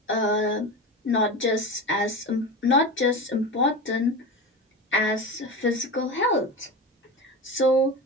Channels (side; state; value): both; normal; correlation 0.26